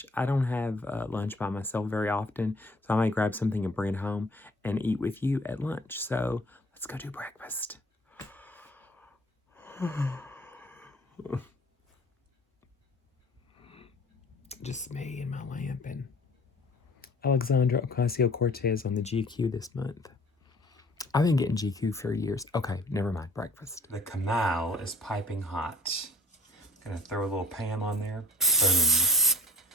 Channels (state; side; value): normal; both; correlation 0.53